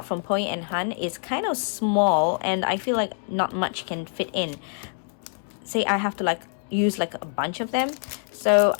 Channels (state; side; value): silent; right; digital silence